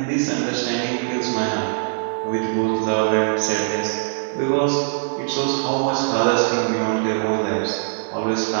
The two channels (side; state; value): left; silent; digital silence